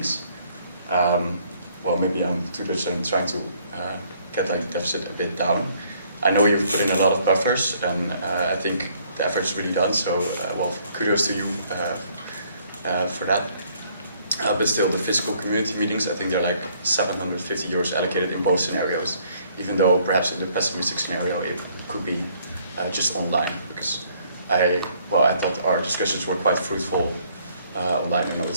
Well, maybe I'm too much trying to get the deficit a bit down. I know you've put in a lot of buffers, and I think the effort's really done. So, well, kudos to you for that. But still, the physical community meetings, I think they're like 750 euros allocated in both scenarios. Even though perhaps in the pessimistic scenario it could be just online, because I thought our discussions were quite fruitful online. I know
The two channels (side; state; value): both; inverted; correlation -0.64